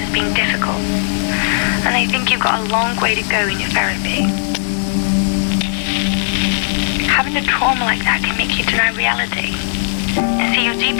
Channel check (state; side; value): silent; right; digital silence